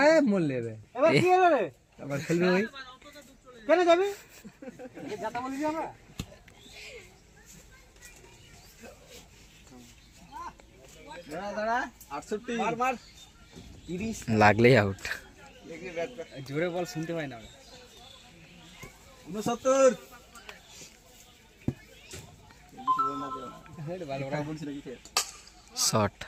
মোল লেবে এবার কি হলো রে আবার খেলবে ওই কেন যাবি যাতা বলি আমরা দাঁড়া 68 মার মার 30 লাগলেই আউট। জোরে বল শুনতে পাই না 69 শট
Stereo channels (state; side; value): identical; both; correlation 1.00